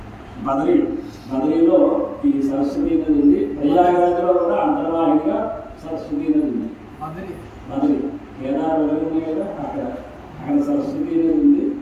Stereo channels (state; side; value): identical; both; correlation 1.00